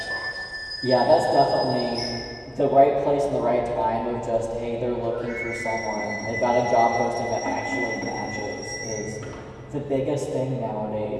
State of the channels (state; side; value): identical; both; correlation 1.00